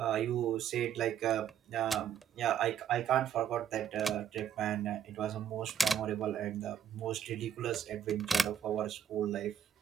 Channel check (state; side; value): quieter; left; 9.0 dB